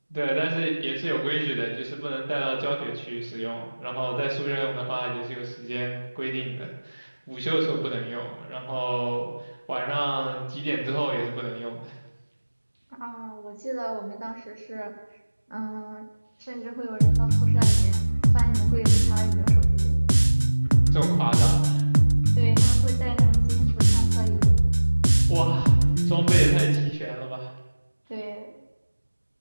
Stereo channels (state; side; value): inverted; both; correlation -1.00